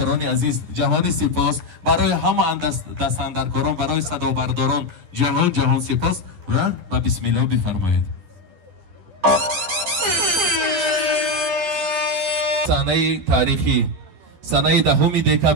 عزیز جهانی سپاس برای همه دستاندرکاران برای صدا برداران جهان سپاس و بسم الله بفرمایید سنه تاریخی سنه 10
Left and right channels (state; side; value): late; left; 11 ms